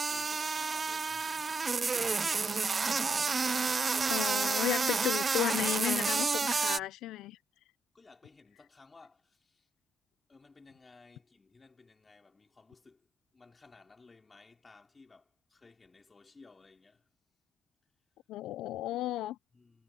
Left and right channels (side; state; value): both; normal; correlation 0.78